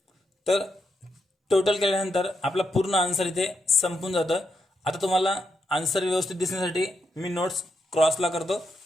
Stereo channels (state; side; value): normal; both; correlation 0.83